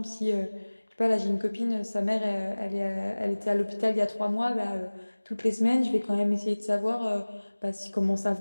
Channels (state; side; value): inverted; both; correlation -1.00